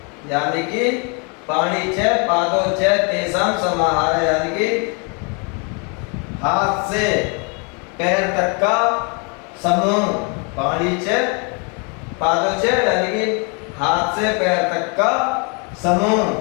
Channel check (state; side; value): quieter; right; 34.9 dB